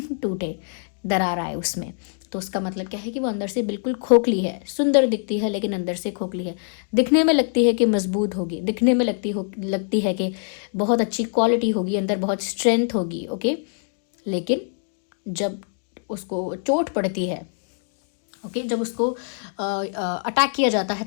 टूटे, दरार आए उसमें, तो उसका मतलब क्या है कि वो अंदर से बिल्कुल खोखली है। सुंदर दिखती है लेकिन अंदर से खोखली है। दिखने में लगती है कि मजबूत होगी, दिखने में लगती है कि बहुत अच्छी क्वालिटी होगी, अंदर बहुत स्ट्रेंथ होगी, ओके, लेकिन जब उसको चोट पड़ती है, ओके, जब उसको अटैक किया जाता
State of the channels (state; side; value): silent; right; 58 dB below the other